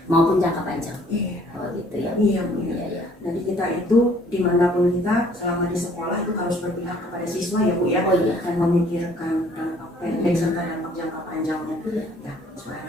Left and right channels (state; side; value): normal; both; correlation 0.59